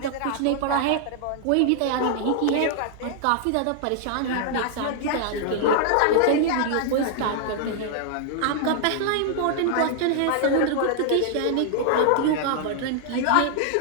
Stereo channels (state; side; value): different; both; correlation 0.00